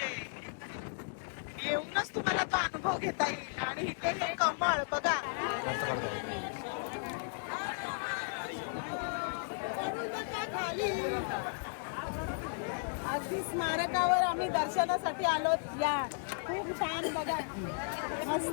येऊनच तुम्हाला तो अनुभव घेता येईल. आणि इथे हे कमळ बघा. खाली अगदी स्मारकावर आम्ही दर्शनासाठी आलो. या खूप छान बघा,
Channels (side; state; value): right; silent; digital silence